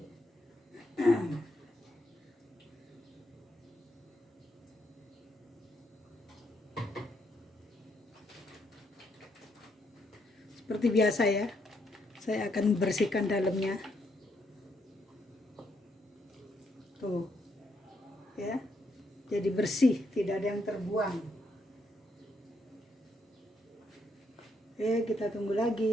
Seperti biasa ya, saya akan bersihkan dalamnya. Tuh, ya, jadi bersih, tidak ada yang terbuang. Oke, kita tunggu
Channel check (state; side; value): normal; both; correlation 0.76